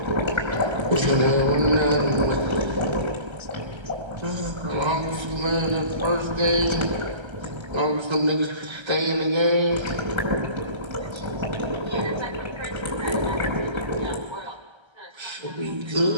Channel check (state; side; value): late; left; 1.3 ms